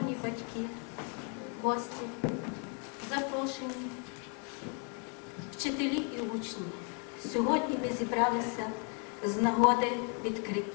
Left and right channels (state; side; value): quieter; right; 38.6 dB